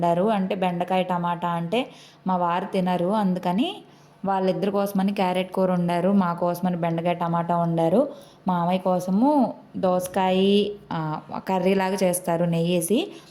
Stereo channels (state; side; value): identical; both; correlation 1.00